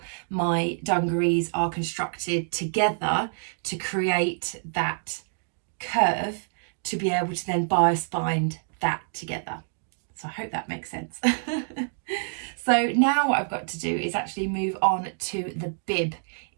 my dungarees are constructed together to create that curve to be able to then bias bind that together. So I hope that makes sense. So now what I've got to do is actually move on to the bib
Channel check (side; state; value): left; silent; digital silence